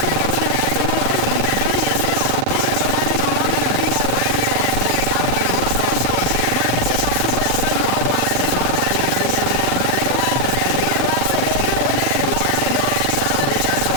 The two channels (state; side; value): different; both; correlation 0.00